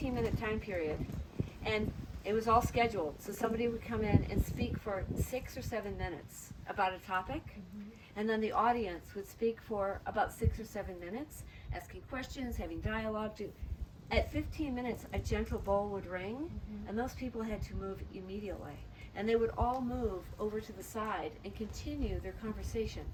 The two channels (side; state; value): both; identical; correlation 1.00